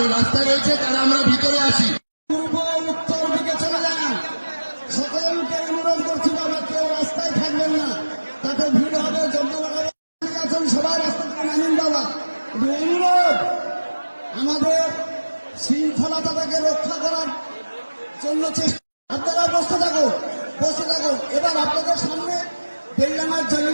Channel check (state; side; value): inverted; both; correlation -1.00